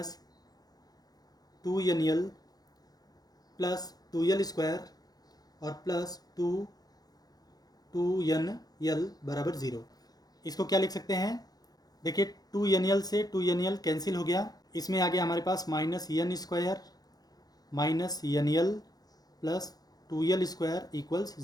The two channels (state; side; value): late; right; 0.19 ms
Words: 2nl plus 2l² और प्लस 2nl बराबर 0। इसको क्या लिख सकते हैं, देखिए 2nl से 2nl कैंसिल हो गया, इसमें आ गया हमारे पास minus n² minus nl plus 2l² equals